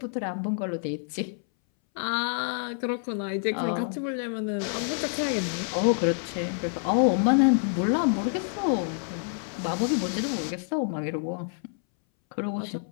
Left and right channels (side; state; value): right; silent; 60 dB below the other